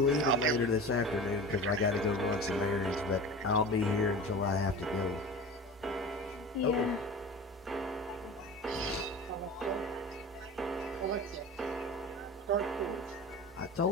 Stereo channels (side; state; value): both; normal; correlation 0.34